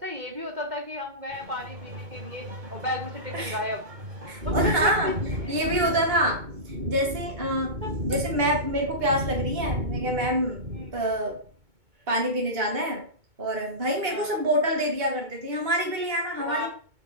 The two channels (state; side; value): late; left; 2.2 ms